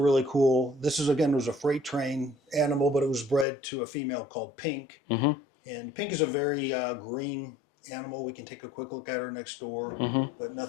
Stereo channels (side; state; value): right; drops out; at 3.5 s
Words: cool. This is again was a freight train animal, but it was bred to a female called Pink. Mm-hmm. And Pink is a very green animal. We can take a quick look at her next door, but